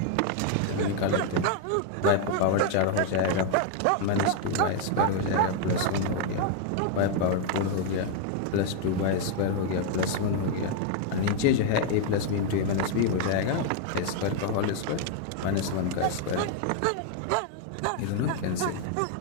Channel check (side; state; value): both; different; correlation 0.00